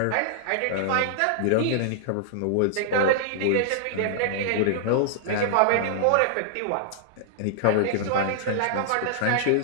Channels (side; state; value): both; different; correlation -0.01